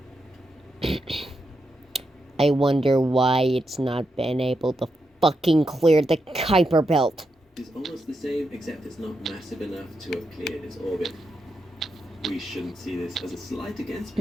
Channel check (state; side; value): normal; both; correlation 0.85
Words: I wonder why it's not been able to fucking clear the Kuiper Belt. It's almost the same, except it's not massive enough to have cleared its orbit. We shouldn't see this as a slight against